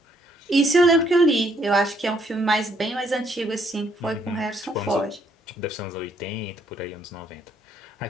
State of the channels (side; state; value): both; normal; correlation 0.69